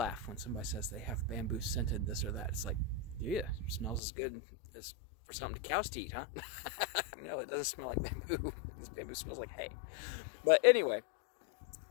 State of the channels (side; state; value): right; drops out; at 4.0 s